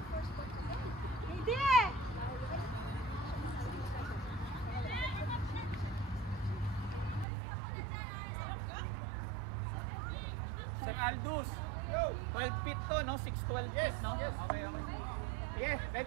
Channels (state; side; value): drops out; left; at 7.2 s